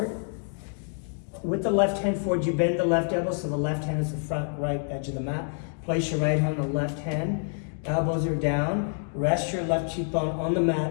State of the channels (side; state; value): right; silent; 58 dB below the other